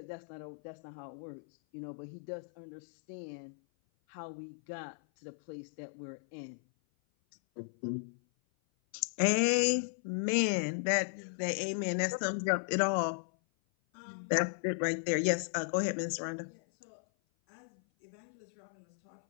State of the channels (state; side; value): silent; right; 54 dB below the other